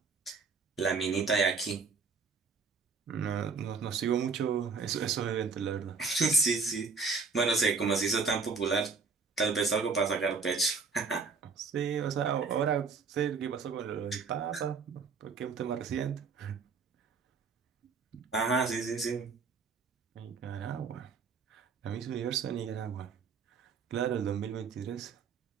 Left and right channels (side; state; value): left; quieter; 5.0 dB